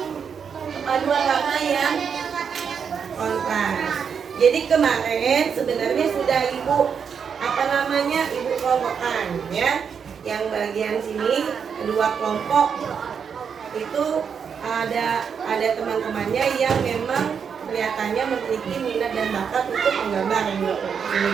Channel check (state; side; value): quieter; left; 6.8 dB